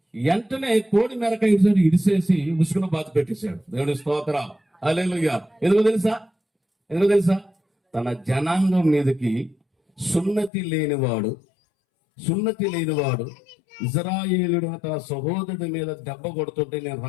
వెంటనే కోడి మెరక ఇడిసేసి ఉసుకున బాధ పెట్టేశాడు. దేవుని స్తోత్రం, హల్లెలూయా. ఎందుకో తెలుసా తన జనాంగం మీదకి సున్నతి లేనివాడు ఇజ్రాయేలుడు తన సహోదరుడి మీద దెబ్బ కొడుతుంటే నేను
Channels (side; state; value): right; drops out; at 10.5 s